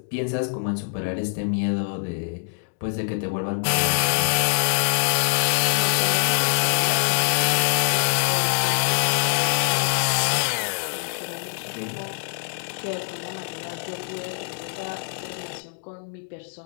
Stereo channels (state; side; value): silent; right; digital silence